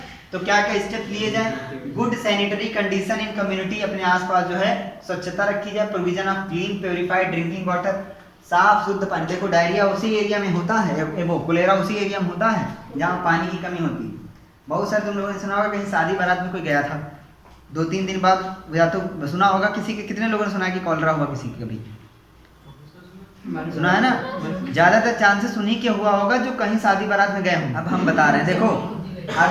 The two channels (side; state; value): both; identical; correlation 1.00